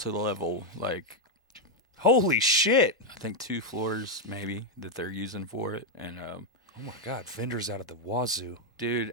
Like, holy shit! I think 2 floors maybe that they're using for it. And oh my god, vendors out of the wazoo, dude!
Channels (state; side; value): normal; both; correlation 0.01